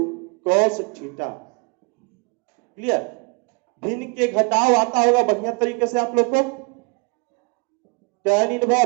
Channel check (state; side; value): quieter; left; 31.6 dB